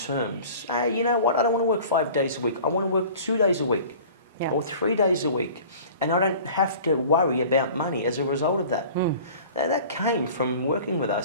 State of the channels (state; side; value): inverted; both; correlation -0.44